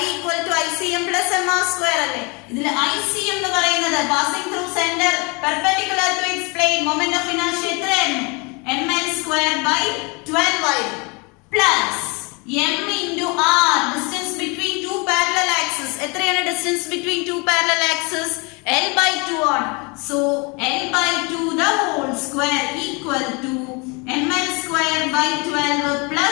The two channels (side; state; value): right; quieter; 29.8 dB